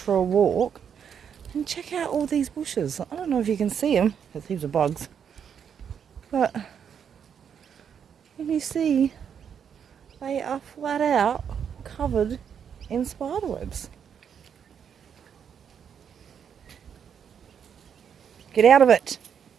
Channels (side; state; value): left; quieter; 7.8 dB